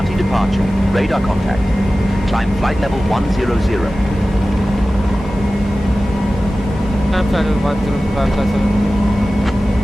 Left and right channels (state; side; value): normal; both; correlation 0.95